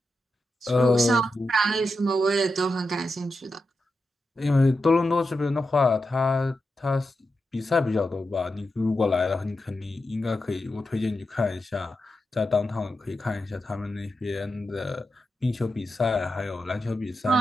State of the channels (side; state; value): both; normal; correlation 0.89